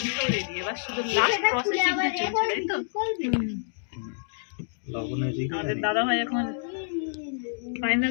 রেডি। এবার শুধু লাস্ট প্রসেসিংটা চলছে, তাই তো? আমাদের দাদা ভাই এখন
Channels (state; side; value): silent; right; digital silence